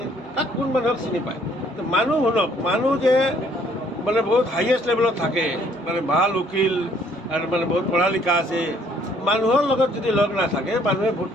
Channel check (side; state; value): both; normal; correlation 0.63